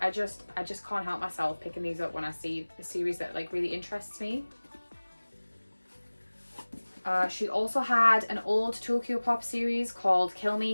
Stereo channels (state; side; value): inverted; both; correlation -1.00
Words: just can't help myself picking these up when I see a series that like really interests me. She also had an old Tokyo Pop series called Kill